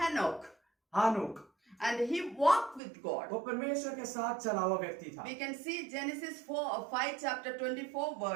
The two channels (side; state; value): left; drops out; at 2.8 s